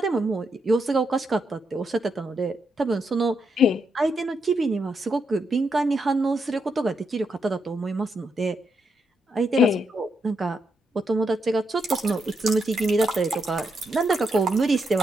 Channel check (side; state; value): both; normal; correlation 0.80